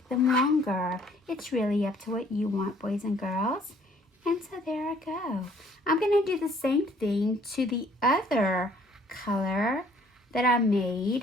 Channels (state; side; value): normal; both; correlation 0.60